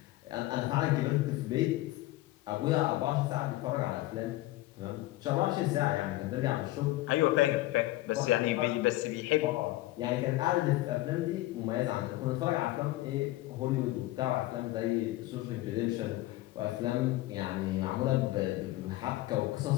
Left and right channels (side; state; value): right; quieter; 17.4 dB